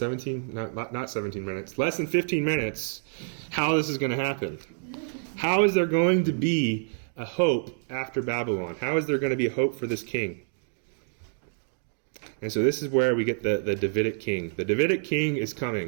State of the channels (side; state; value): left; silent; digital silence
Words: not 17 minutes, less than 15 minutes, how this is going to happen. How is there going to be a hope after Babylon? How is there going to be a hope for this king? And so this is where we get the Davidic king. The Davidic king is